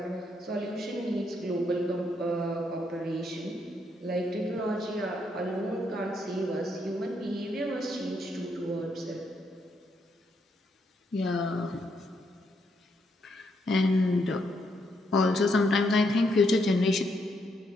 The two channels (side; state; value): both; normal; correlation 0.76